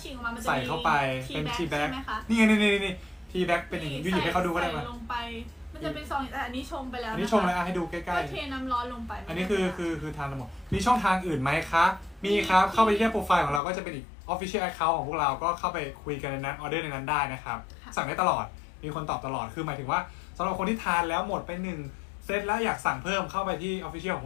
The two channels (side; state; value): right; drops out; at 13.6 s